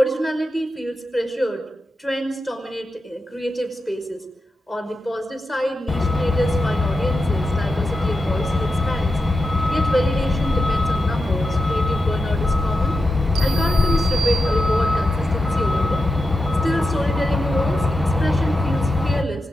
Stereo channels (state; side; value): normal; both; correlation 0.89